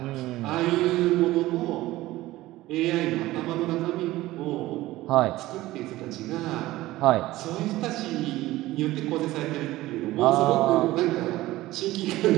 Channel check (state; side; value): quieter; left; 17.2 dB